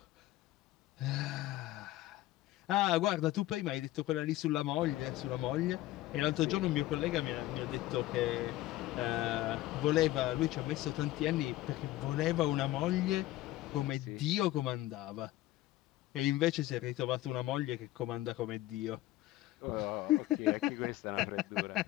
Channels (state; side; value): quieter; right; 16.1 dB